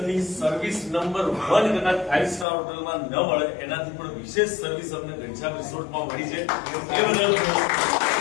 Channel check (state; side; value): drops out; right; at 2.5 s